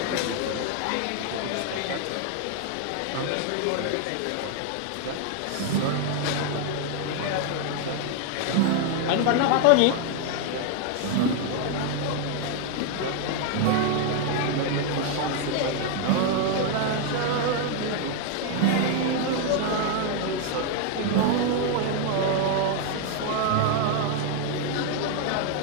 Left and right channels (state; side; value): different; both; correlation 0.00